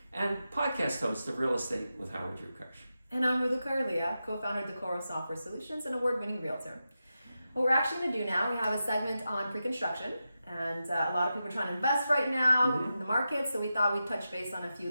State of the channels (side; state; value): both; inverted; correlation -0.90